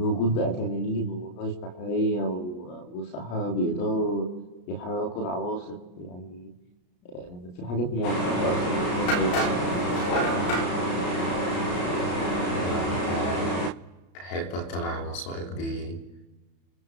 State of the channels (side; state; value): right; late; 33 ms